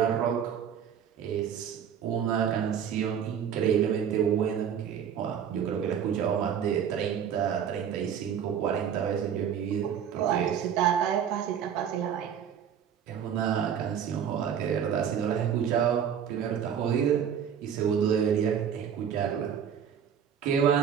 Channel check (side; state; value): left; quieter; 8.4 dB